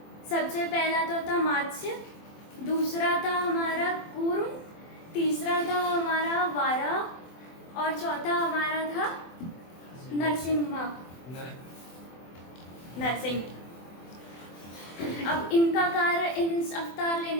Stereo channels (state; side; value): late; right; 24 ms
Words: सबसे पहला तो था मत्स्य, दूसरा था हमारा कूर्म, तीसरा था हमारा वारा और चौथा हमारा था नरसिंह। अब इनका कारण, इन अवतार